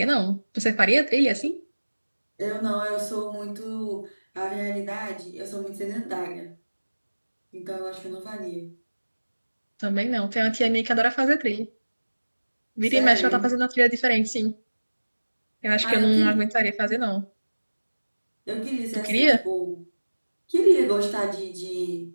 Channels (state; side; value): inverted; both; correlation -1.00